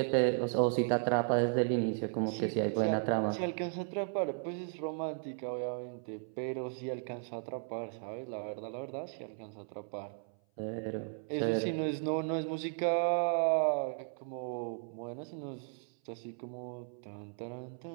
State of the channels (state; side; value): silent; left; 54 dB below the other